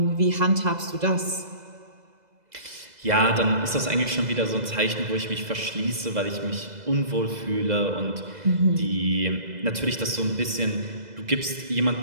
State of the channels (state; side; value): late; left; 2.0 ms